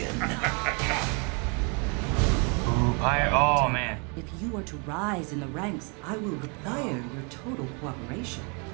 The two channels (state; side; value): quieter; left; 34.6 dB